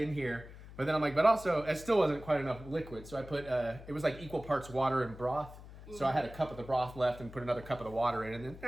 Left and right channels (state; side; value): noise; left; hum, 16 dB below the sound